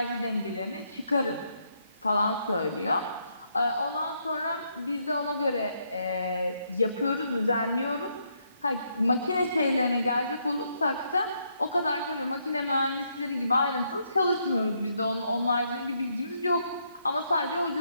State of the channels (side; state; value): both; inverted; correlation -0.76